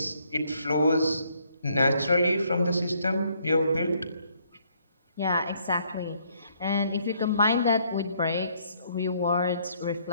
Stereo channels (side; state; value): both; inverted; correlation -0.68